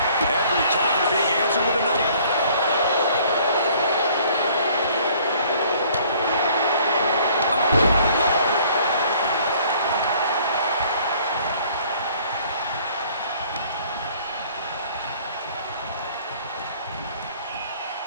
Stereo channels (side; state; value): both; inverted; correlation -0.57